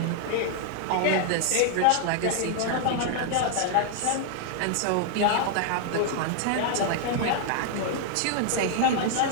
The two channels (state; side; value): different; both; correlation 0.00